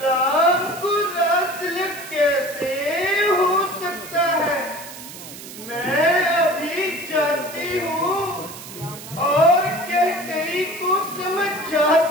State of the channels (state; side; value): noise; right; hiss, 14 dB below the sound